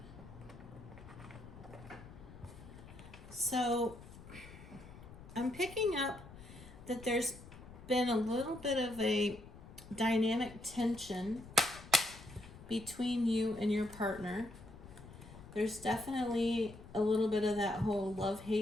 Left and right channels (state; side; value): noise; left; rumble, 17 dB below the sound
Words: So I'm picking up that there's been a little bit of a dynamic tension between you and your partner. There's definitely a little bit of that whole